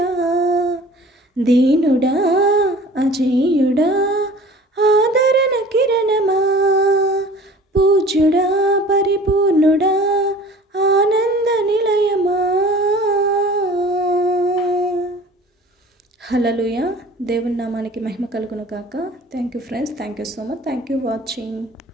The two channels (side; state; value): both; normal; correlation 0.45